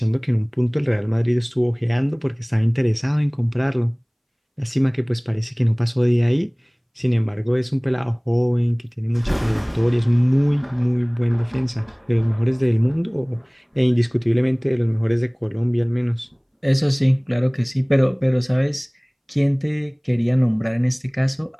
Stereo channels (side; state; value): both; identical; correlation 1.00